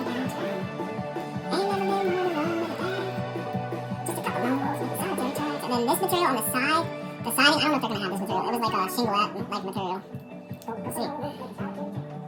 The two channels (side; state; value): both; identical; correlation 1.00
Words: And then this material on the side. The siding, I don't know if they're going to have this material. It was like a shingle-like material. We'll see.